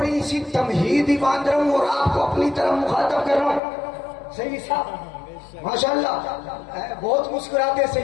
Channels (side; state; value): right; drops out; at 3.6 s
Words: سی تمہید ہی باندھ رہا ہوں اور آپ کو اپنی طرف مخاطب کر رہا ہوں. صحیح صاحب ماشاءاللہ, بہت مسکراتے ہیں